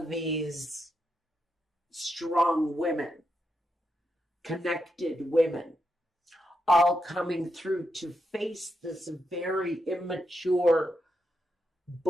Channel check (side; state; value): both; normal; correlation 0.83